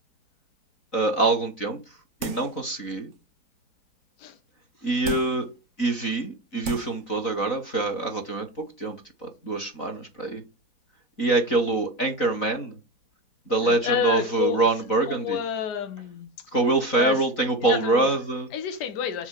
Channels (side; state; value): right; late; 4.0 ms